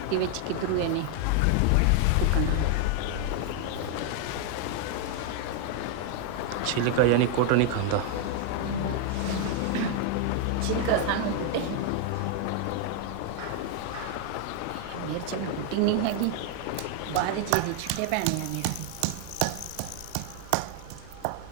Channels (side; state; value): both; different; correlation 0.00